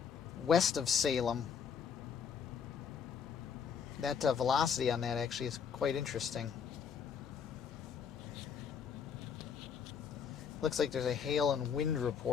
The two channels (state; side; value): quieter; right; 7.0 dB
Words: west of Salem. That velocity on that actually is quite interesting. Looks like there's a hail and wind